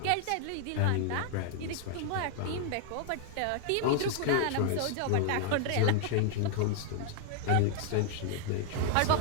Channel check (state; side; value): different; both; correlation 0.00